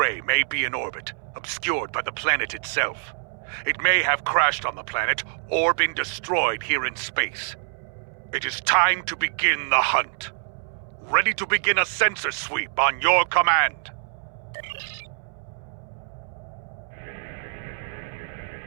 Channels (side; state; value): left; silent; 61 dB below the other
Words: may be in orbit, obscured by the planet itself. It may have crashed on the planet or been destroyed here in space. It is time to begin the hunt. Ready to begin a sensor sweep on your command.